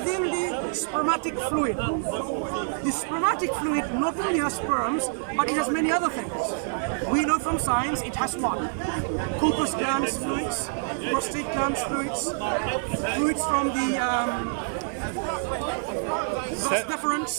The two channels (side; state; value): left; silent; 60 dB below the other